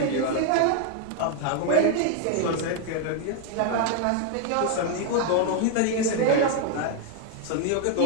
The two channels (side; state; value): both; different; correlation 0.00